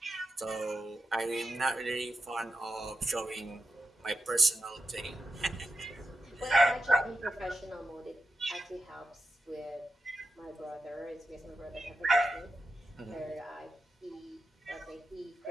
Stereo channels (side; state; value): both; normal; correlation 0.88